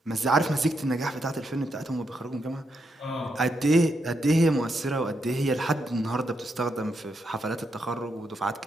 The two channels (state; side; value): normal; both; correlation 0.81